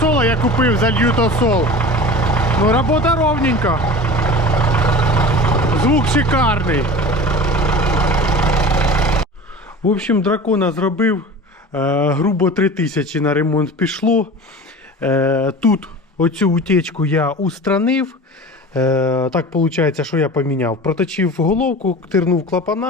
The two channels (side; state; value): both; normal; correlation 0.36